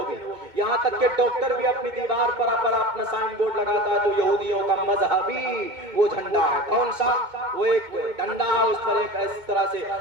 بھی۔ یہاں تک کہ ڈاکٹر بھی اپنی دیوار پر اپنا سائن بورڈ لگاتا ہے جو یہودیوں کا مذہبی وہ جھنڈا ہے۔ کون سا؟ وہ ایک ڈنڈا ہے، اس پر ایک اس طرح سے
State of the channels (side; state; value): left; late; 2.2 ms